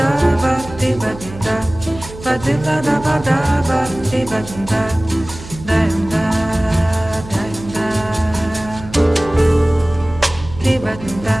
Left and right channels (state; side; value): noise; right; hum, 15 dB below the sound